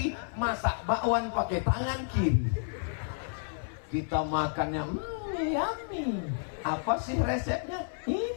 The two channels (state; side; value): silent; right; 57 dB below the other